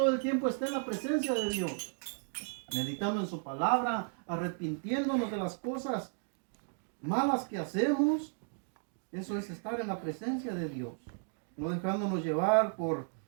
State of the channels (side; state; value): left; silent; 55 dB below the other